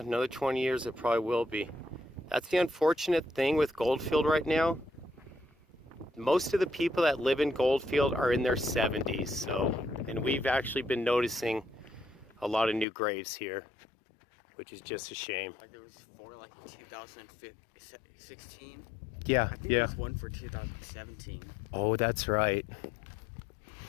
20 years it probably will be. That's the unfortunate thing with Goldfield right now. Most of the people that live in Goldfield are in their 70s, so, and we've actually been noticing a lot of new graves here, which is just a shame. Like there was 4 like in 2016. Yeah, I think yeah. there's one for 2017. Oh, that's right.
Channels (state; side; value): drops out; right; at 12.9 s